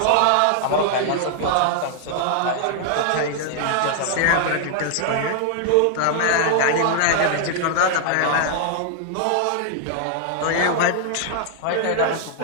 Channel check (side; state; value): both; different; correlation -0.01